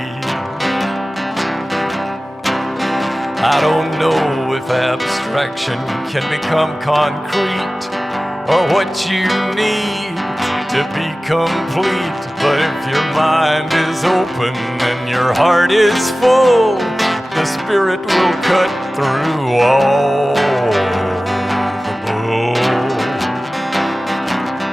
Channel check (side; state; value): both; normal; correlation 0.97